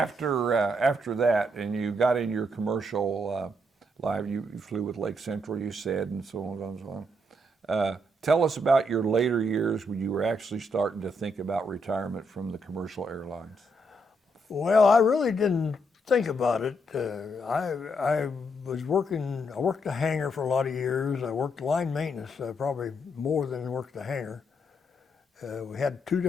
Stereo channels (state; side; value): normal; both; correlation 0.77